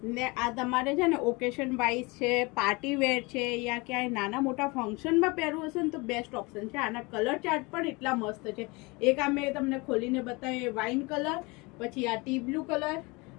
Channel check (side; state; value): right; quieter; 26.1 dB